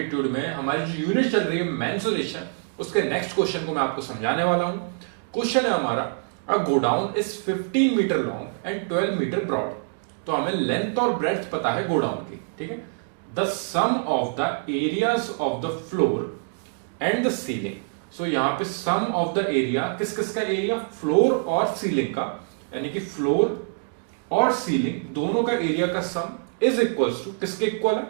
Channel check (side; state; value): left; silent; digital silence